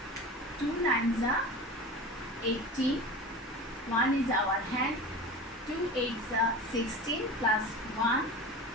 2 nines are 18. 1 is our hand. 2 eights are 16 plus 1.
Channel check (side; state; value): both; normal; correlation 0.33